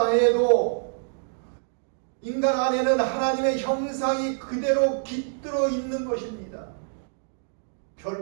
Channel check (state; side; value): silent; left; digital silence